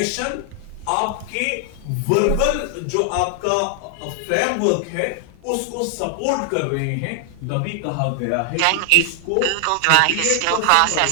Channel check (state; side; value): different; both; correlation 0.00